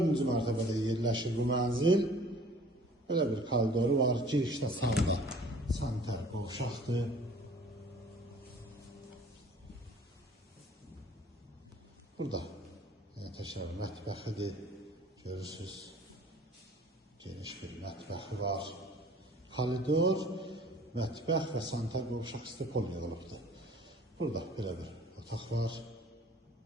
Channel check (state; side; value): normal; both; correlation 0.51